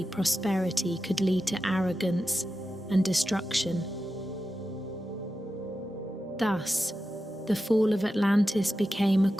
prosperity could lead to arrogance and destruction. Thus, the fall of Atlantis became a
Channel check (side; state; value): both; normal; correlation 0.91